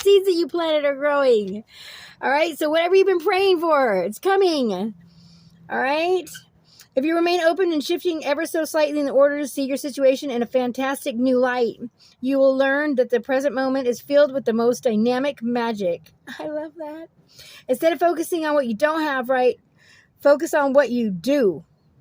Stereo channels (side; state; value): both; identical; correlation 1.00